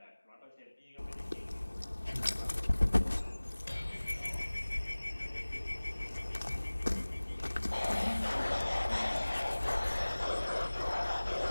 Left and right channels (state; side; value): inverted; both; correlation -1.00